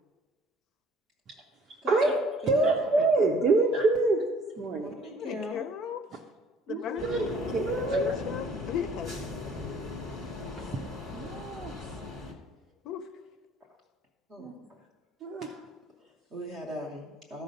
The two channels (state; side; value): normal; both; correlation 0.56